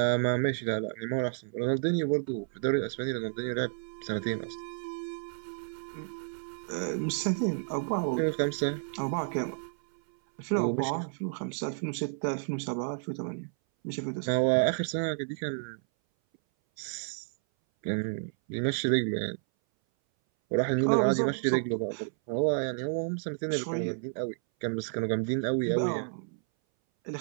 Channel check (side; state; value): left; silent; 57 dB below the other